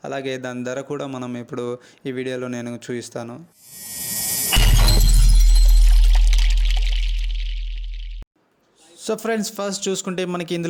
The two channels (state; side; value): identical; both; correlation 1.00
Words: అలాగే దాని ధర కూడా మనం ఇప్పుడు ఈ వీడియోలో నేను చూపిస్తాను. సో ఫ్రెండ్స్, ఫస్ట్ చూసుకుంటే మనకి